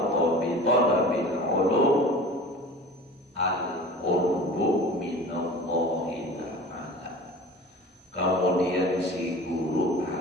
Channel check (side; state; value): both; normal; correlation 0.40